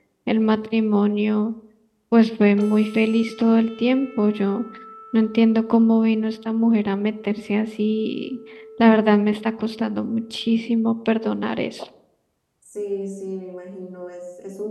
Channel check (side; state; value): both; identical; correlation 1.00